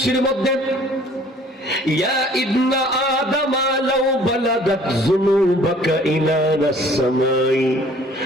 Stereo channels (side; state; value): both; normal; correlation 0.54